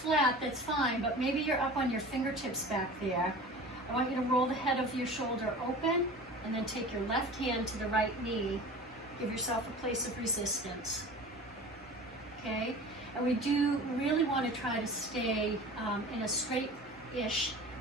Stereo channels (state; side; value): normal; both; correlation 0.38